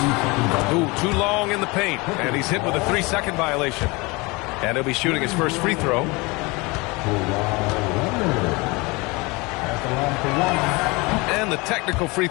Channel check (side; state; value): right; quieter; 25.6 dB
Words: Ooh, too long in the paint. And he's hit with a 3-second violation. And he'll be shooting his first free throw. And the technical free